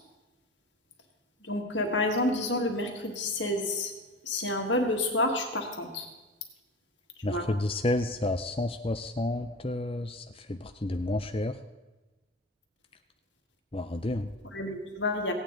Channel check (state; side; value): normal; both; correlation 0.31